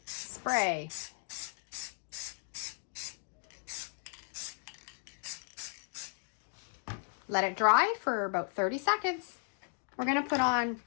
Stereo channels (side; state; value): right; silent; 54 dB below the other